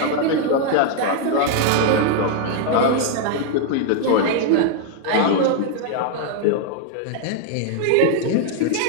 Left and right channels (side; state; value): both; different; correlation 0.00